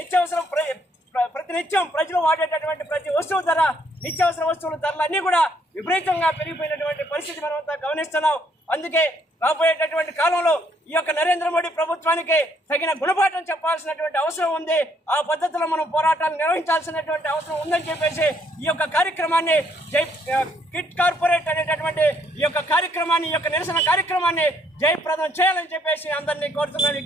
ప్రతినిత్యం ప్రజలు వాడేటటువంటి ప్రతి వస్తువు ధర, నిత్యావసర వస్తువుల ధరలు అన్నీ కూడా విపరీతంగా పెరిగిపోయినటువంటి పరిస్థితి మనం అంతా గమనిస్తున్నాం. అందుకే రాబోయేటటువంటి కాలంలో ఈ యొక్క నరేంద్ర మోడీ ప్రభుత్వానికి తగిన గుణపాఠం చెప్పాల్సినటువంటి అవసరం ఉంది. ఆ పద్ధతిలో మనం పోరాటాలు నిర్వహించాల్సినటువంటి అవసరం ఉందని చెప్పేసి ఈ యొక్క కార్యక్రమాన్ని కిట్ కార్పొరేట్ అనేటటువంటి ఈ యొక్క నిరసన కార్యక్రమాన్ని జయప్రదం చేయాలని చెప్పేసి అందరినీ కోరుతున్నాను,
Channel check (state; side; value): normal; both; correlation 0.69